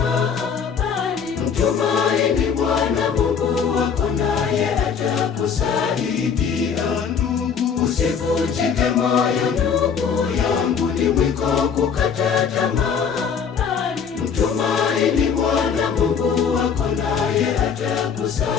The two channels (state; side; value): quieter; right; 6.8 dB